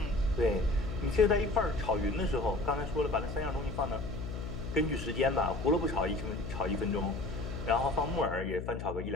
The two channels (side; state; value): left; noise; hum, 7 dB below the sound